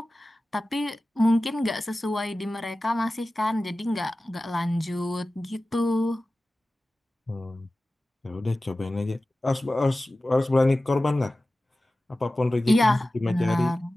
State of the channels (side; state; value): both; normal; correlation 0.96